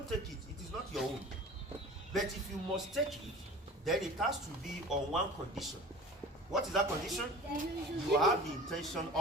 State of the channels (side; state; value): both; normal; correlation 0.41